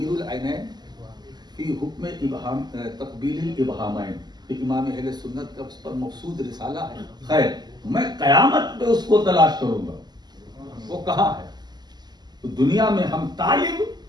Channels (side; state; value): left; late; 0.20 ms